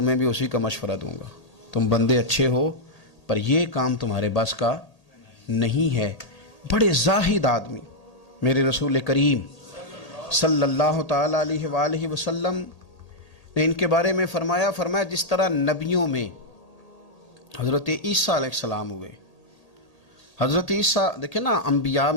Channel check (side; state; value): right; late; 1.8 ms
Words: بھی اسی کا مشورہ دوں گا، تم بندے اچھے ہو پر یہ کام تمہارے بس کا نہیں ہے۔ بڑے زاہد آدمی میرے رسول کریم صلی اللہ تعالیٰ علیہ وآلہ وسلم نے ان کے بارے میں فرمایا جس طرح نبیوں میں حضرت عیسیٰ علیہ السلام ہوئے، حضرت عیسیٰ دیکھیں نا، انبیاء